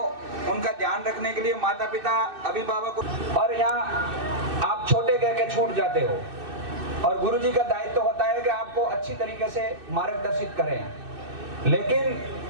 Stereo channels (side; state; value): left; late; 2.6 ms